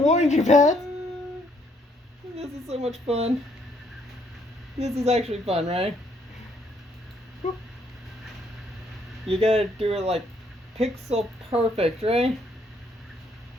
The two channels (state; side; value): normal; both; correlation 0.69